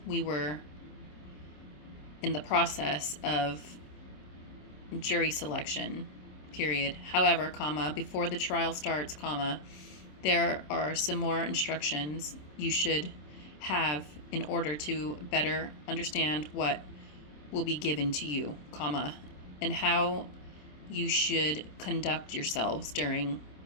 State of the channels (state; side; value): late; right; 27 ms